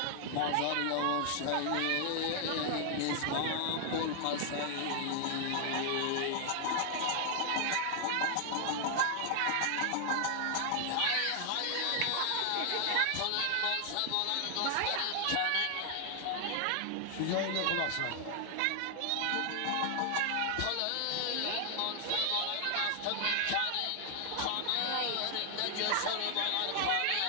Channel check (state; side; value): different; both; correlation 0.00